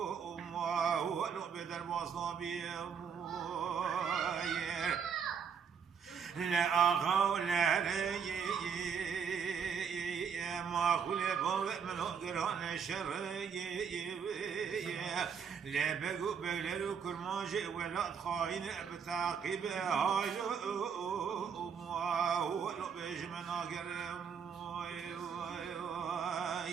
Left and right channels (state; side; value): quieter; left; 6.9 dB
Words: أمه ولو بدر باصنا بيه لا أخو لا ري ما كل بوق من قران شر لا بقو بقلو كل ما جاء ولا خاين بتعقيب هاي هو لو بيج من أقرم